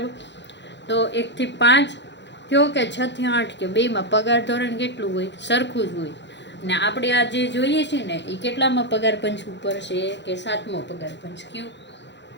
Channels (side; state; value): right; late; 0.52 ms